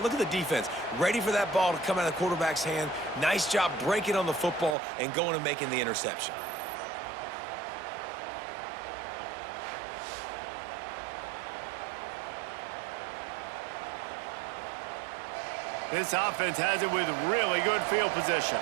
Look at the defense. Ready for that ball to come out of the quarterback's hand. Nice job breaking on the football and going and making the interception. This offense has it with really good field position.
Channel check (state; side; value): drops out; left; at 4.8 s